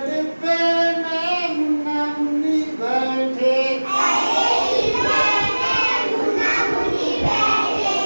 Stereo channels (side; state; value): both; inverted; correlation -1.00